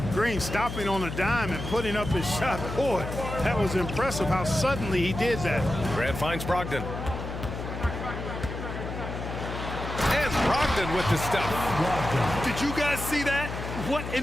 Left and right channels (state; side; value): noise; left; hum, 7 dB below the sound